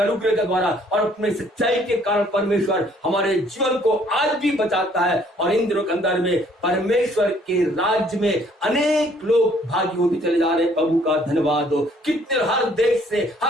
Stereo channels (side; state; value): both; normal; correlation 0.62